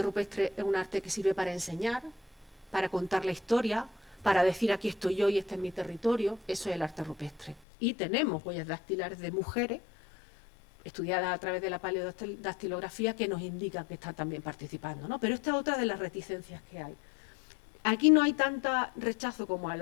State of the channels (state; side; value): drops out; right; at 7.6 s